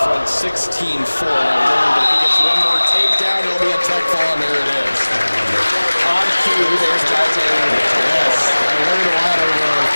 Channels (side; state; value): both; inverted; correlation -1.00